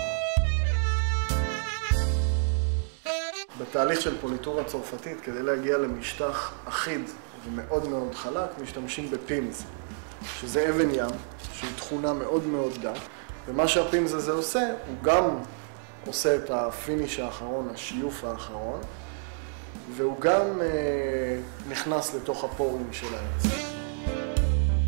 בתהליך של פוליטורה צרפתית, כדי להגיע למשטח אחיד ומאוד מאוד חלק, משתמשים בפימס, שזה אבן ים, שהיא תכונה מאוד מאוד גה, ומה שהפימס הזה עושה, הוא גם עושה את הפיניש האחרון, השיוף האחרון, והוא גם נכנס לתוך הפורים של העץ.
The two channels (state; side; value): silent; left; digital silence